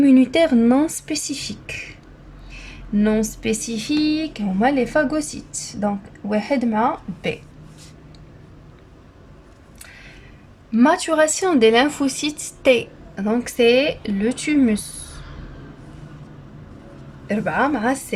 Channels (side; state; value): both; identical; correlation 1.00